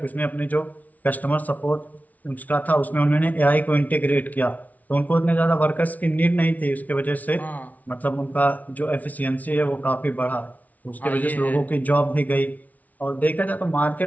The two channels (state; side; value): late; right; 0.073 ms